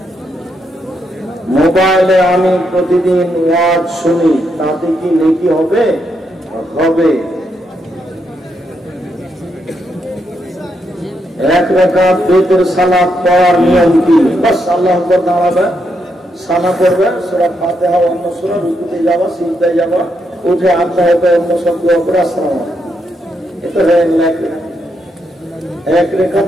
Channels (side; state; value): both; normal; correlation 0.80